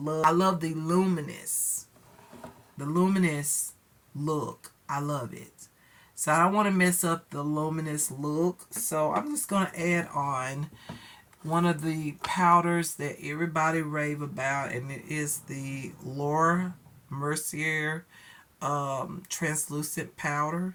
the luminous look. I love it. So I don't want to mess up the luminous look. So I'm just going to add on one of the powders that everybody rave about, and it is the Laura Mercier translucent powder.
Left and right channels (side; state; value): both; identical; correlation 1.00